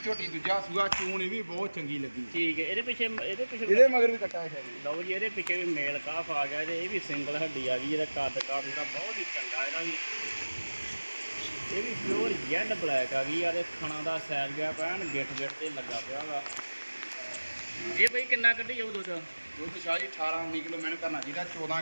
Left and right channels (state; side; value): inverted; both; correlation -1.00